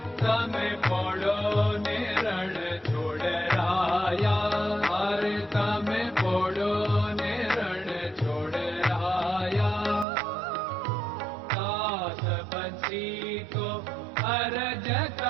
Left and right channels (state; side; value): drops out; left; at 10.1 s